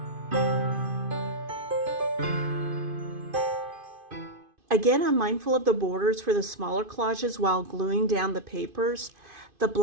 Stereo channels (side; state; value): left; late; 2.5 ms